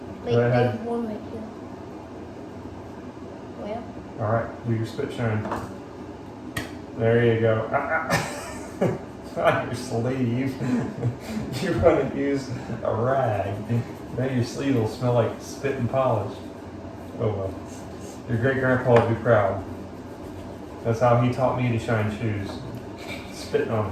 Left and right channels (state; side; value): identical; both; correlation 1.00